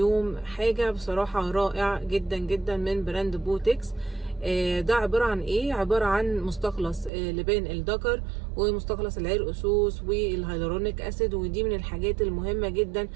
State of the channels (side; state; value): left; drops out; at 7.1 s